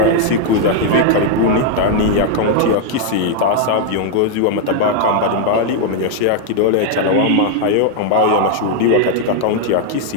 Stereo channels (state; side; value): different; both; correlation 0.00